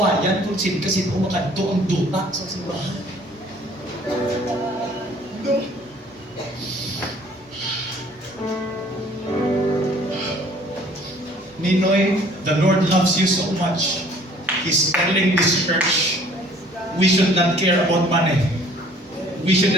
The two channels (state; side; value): normal; both; correlation 0.55